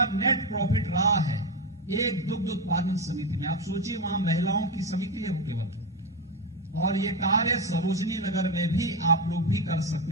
नेट प्रॉफिट रहा है एक दुग्ध उत्पादन समिति में। आप सोचिए, वहां महिलाओं की समिति है वो केवल, और ये कार्य सरोजनी नगर में भी आप लोग भी कर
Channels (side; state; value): both; normal; correlation 0.13